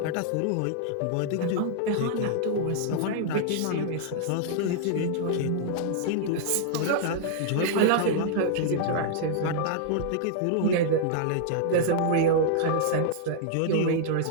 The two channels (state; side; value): different; both; correlation -0.01